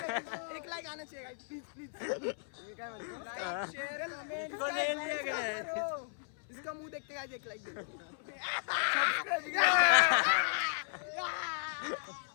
एक लाइक आना चाहिए गाइस प्लीज क्या लाइक शेयर कमेंट इसका मुंह देखते गाइस एक लाइक दे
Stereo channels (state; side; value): silent; right; 54 dB below the other